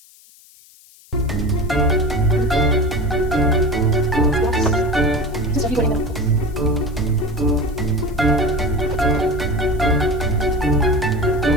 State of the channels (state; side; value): noise; left; hiss, 26 dB below the sound